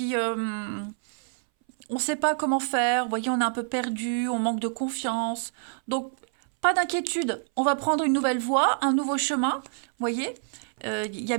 on ne sait pas comment faire, vous voyez, on est un peu perdu, on manque de confiance. Donc, pas d'inquiétude, on va prendre une nouvelle voie, un nouveau chemin, vous voyez. Il y a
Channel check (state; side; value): silent; left; 60 dB below the other